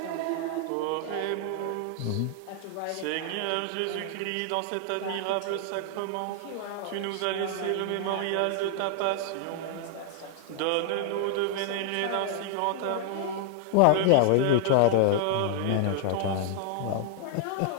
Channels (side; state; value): both; different; correlation -0.01